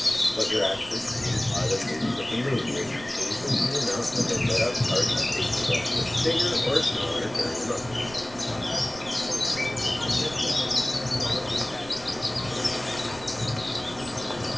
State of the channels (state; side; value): noise; right; rumble, 19 dB below the sound